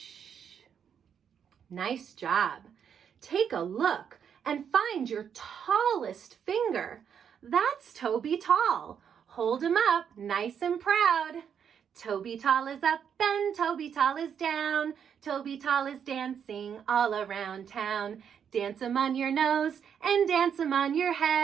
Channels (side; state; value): left; quieter; 7.9 dB